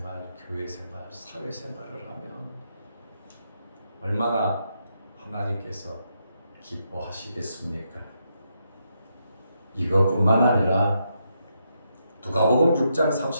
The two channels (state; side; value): inverted; both; correlation -0.81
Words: 교회생활, 사회생활을 하면 얼마나 하나님께서 기뻐하시겠습니까? 이것뿐만 아니라 누가복음 6장